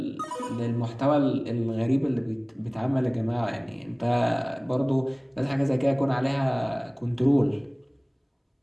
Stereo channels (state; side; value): identical; both; correlation 1.00